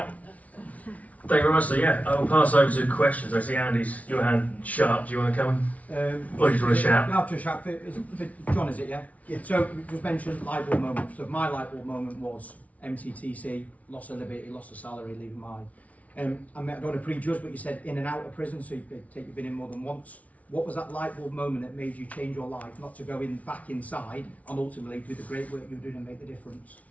Thank you very much. So I will pass over to questions. I see Andy's, your hand sharp. Do you want to come? Or do you want to shout? No, just shout. John, is it, yeah? Yeah. So, you just mentioned light bulb moment. So, my light bulb moment was MTTC, loss of liberty, loss of salary, leaving mine. I don't want to prejudge, but you said in and out of prison, so you've been in more than once. What was that light bulb moment that made you change your life, not to go back inside and ultimately do the great work you're doing and make the difference?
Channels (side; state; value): right; late; 0.068 ms